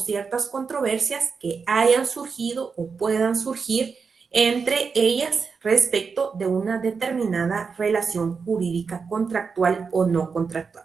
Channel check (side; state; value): left; quieter; 5.4 dB